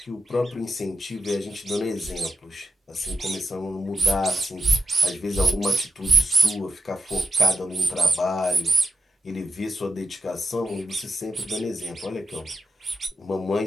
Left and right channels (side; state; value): both; normal; correlation 0.87